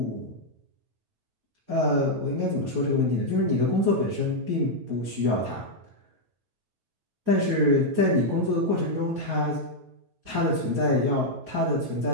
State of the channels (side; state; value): left; late; 9.2 ms